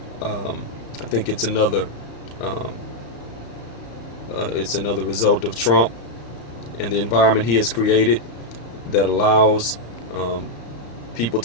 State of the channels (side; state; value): right; late; 34 ms